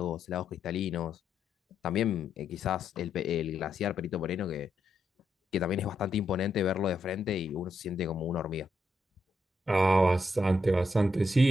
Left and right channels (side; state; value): both; normal; correlation 0.80